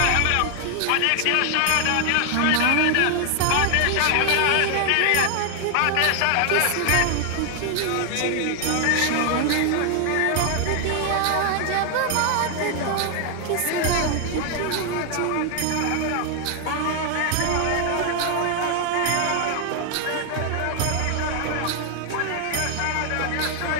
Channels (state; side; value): different; both; correlation 0.00